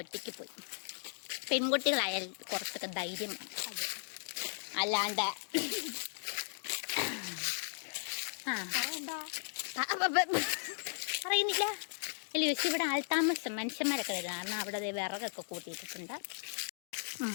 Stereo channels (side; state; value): right; silent; digital silence